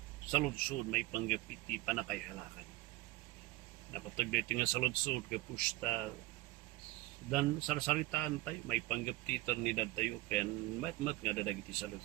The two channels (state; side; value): quieter; left; 18.5 dB